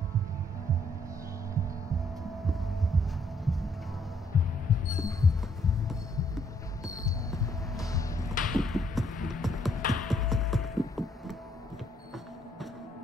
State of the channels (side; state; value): both; normal; correlation 0.69